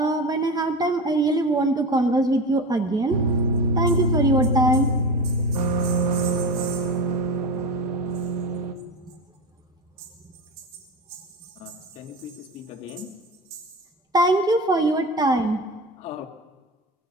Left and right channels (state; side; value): normal; both; correlation 0.25